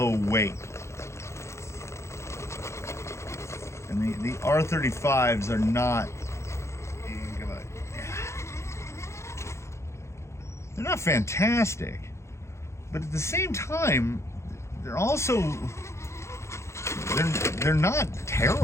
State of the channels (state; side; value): late; right; 0.13 ms